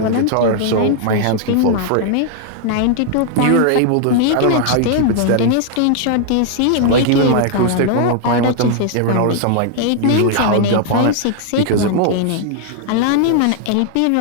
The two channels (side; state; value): both; different; correlation 0.00